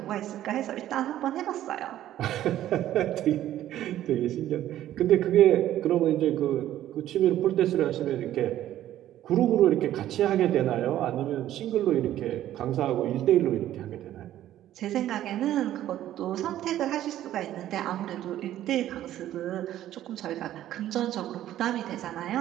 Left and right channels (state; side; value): quieter; left; 12.7 dB